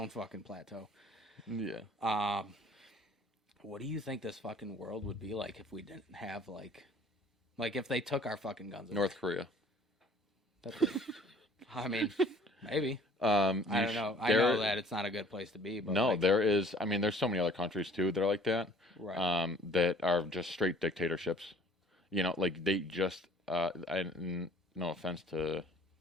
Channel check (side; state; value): both; normal; correlation 0.54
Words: fucking plateau. Yeah. What do you think this fucking world would be like if we didn't have like if they took our fucking guns away? North Korea. I mean, maybe. I don't know. I know that it's not a good place to be. But no, there is. I mean, there's so many other countries too that are like that. Right. That are just straight dictatorships. Like they just. No offense to.